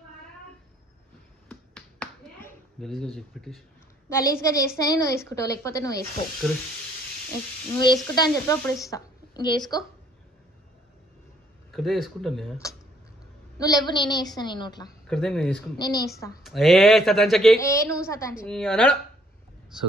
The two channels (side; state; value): both; normal; correlation 0.63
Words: గలీజ్గా చేస్తేనే నువ్వు వేసుకుంటావు, లేకపోతే నువ్వు వేసుకో. నువ్వు వేసుకుంటా అని చెప్పి అప్పుడు ఇస్తా. ఇంక వేసుకో. ఇక్కడే వేసుకుంటాను. నువ్వు లేవు, నేనే వేస్తాను. నేను నోట్లా నేనే వేస్తా. నువ్వు సతాంచు. సో